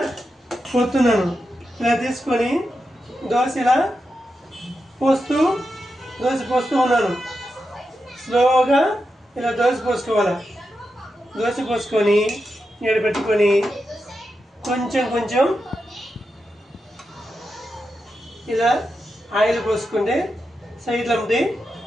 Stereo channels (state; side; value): normal; both; correlation 0.88